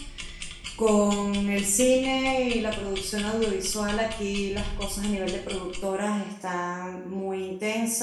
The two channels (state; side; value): identical; both; correlation 1.00